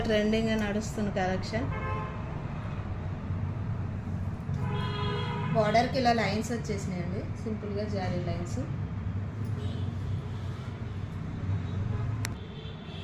ట్రెండింగ్గా నడుస్తున్న కలెక్షన్. బార్డర్కి ఇలా లైన్స్ వచ్చేసినాయండి, సింపుల్గా జారీ లైన్స్.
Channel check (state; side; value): identical; both; correlation 1.00